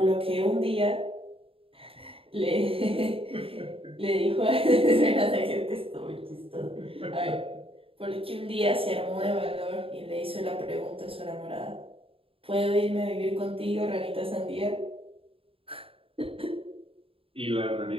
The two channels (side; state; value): left; late; 0.27 ms